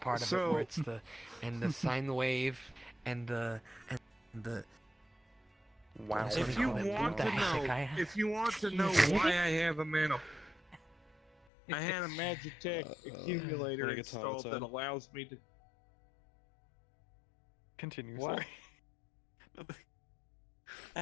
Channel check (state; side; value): drops out; right; at 11.3 s